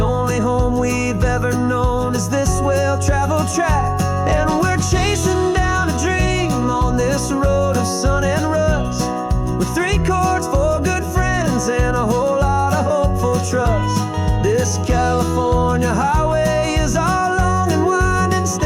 home we've ever known is this well-traveled track, and we're chasing down a dream on this road of sun and rust, with 3 chords, 4 good friends, and a whole lot of hopeful trust. This California highway is our long and winding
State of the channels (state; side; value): identical; both; correlation 1.00